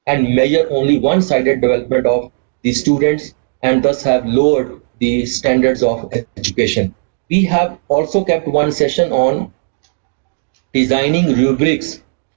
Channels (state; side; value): silent; left; digital silence